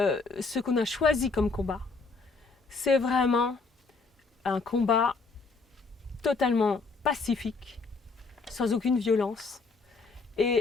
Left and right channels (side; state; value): right; quieter; 4.2 dB